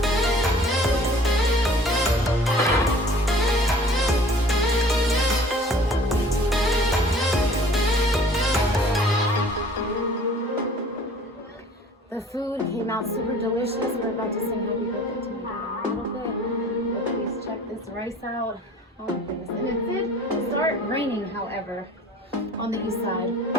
not super delicious. We're about to sing happy birthday to my dad in a little bit. But please check this rice out. Oh my goodness. And it did start raining, however, on the east side.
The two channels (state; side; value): normal; both; correlation 0.49